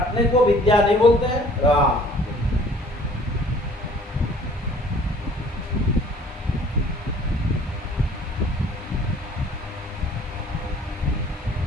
को विद्या नहीं बोलते हैं। हाँ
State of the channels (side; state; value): both; normal; correlation 0.54